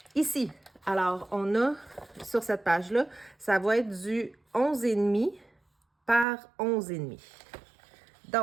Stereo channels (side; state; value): left; drops out; at 6.2 s